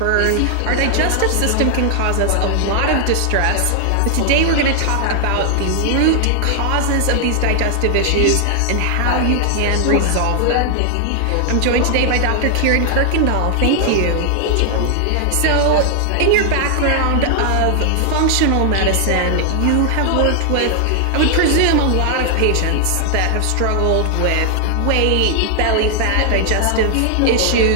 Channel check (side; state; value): both; different; correlation 0.00